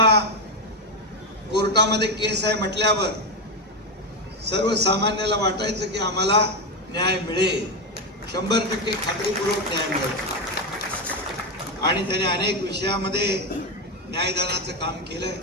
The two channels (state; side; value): normal; both; correlation 0.11